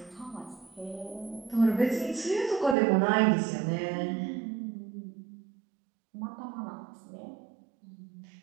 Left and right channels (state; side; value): drops out; left; at 2.8 s